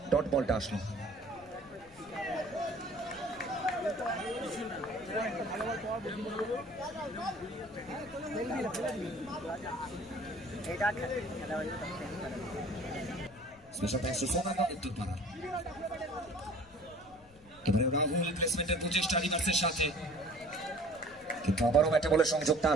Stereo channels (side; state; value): left; noise; rumble, 24 dB below the sound